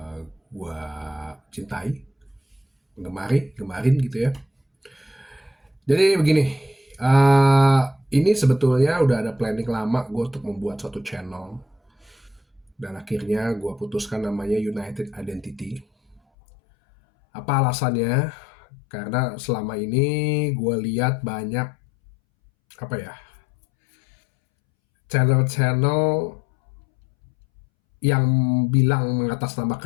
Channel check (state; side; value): drops out; right; at 16.2 s